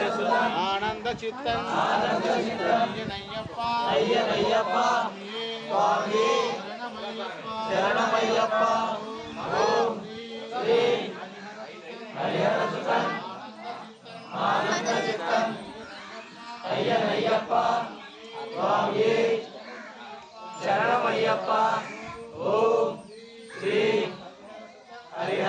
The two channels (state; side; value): identical; both; correlation 1.00